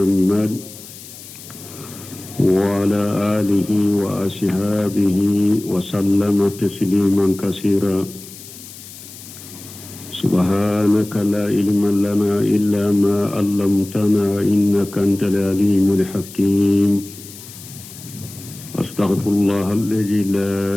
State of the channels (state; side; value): noise; left; hiss, 16 dB below the sound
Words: وعلى آله وأصحابه وسلم تسليما كثيرا. سبحانك لا علم لنا إلا ما علمتنا إنك أنت العليم الحكيم. أستغفر الله الذي لا